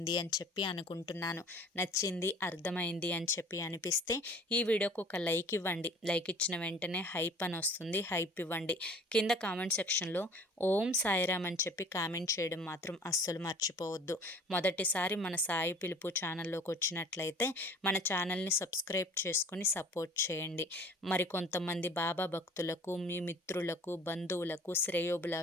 అని చెప్పి అనుకుంటున్నాను. నచ్చింది అర్థమైంది అని చెప్పి అనిపిస్తే ఈ వీడియోకి ఒక లైక్ ఇవ్వండి. లైక్ ఇచ్చిన వెంటనే హైప్ అని వస్తుంది, హైప్ ఇవ్వండి. కింద కామెంట్ సెక్షన్లో ఓం సాయిరామ్ అని చెప్పి కామెంట్ చేయడం మాత్రం అస్సలు మర్చిపోవద్దు. మొదటిసారి మన సాయి పిలుపు ఛానల్లోకి వచ్చినట్లయితే మన ఛానల్ని సబ్స్క్రైబ్ చేసుకుని సపోర్ట్ చేయండి. మరి కొంతమంది బాబా భక్తులకు, మీ మిత్రులకు, బంధువులకు,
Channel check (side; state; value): both; normal; correlation 0.48